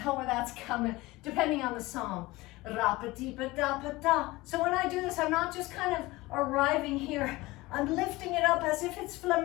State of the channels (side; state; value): right; quieter; 20.5 dB